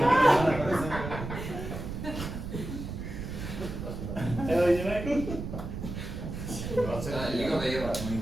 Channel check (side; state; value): right; noise; rumble, 7 dB below the sound